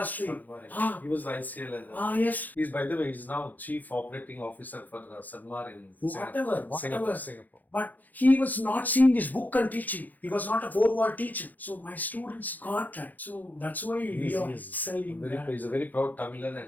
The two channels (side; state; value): right; late; 0.083 ms